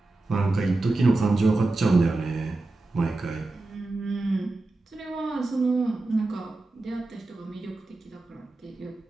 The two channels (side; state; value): left; quieter; 3.1 dB